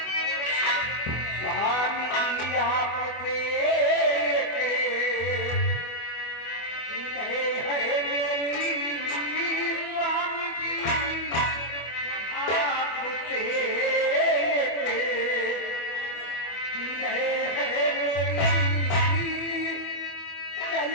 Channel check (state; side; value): late; right; 24 ms